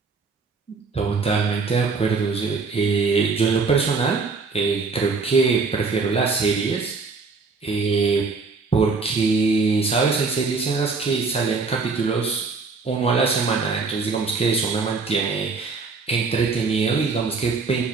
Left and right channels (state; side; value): quieter; left; 4.5 dB